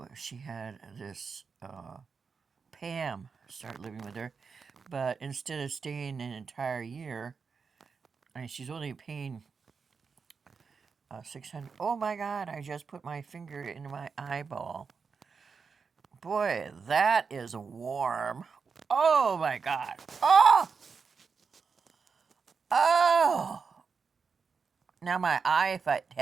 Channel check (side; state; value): left; quieter; 5.4 dB